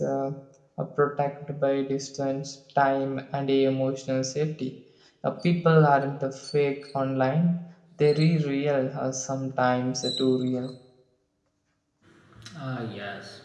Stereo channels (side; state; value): both; identical; correlation 1.00